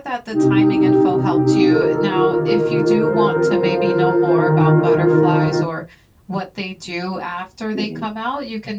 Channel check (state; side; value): identical; both; correlation 1.00